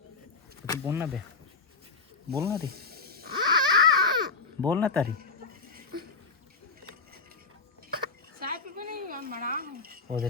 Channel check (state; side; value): quieter; right; 4.2 dB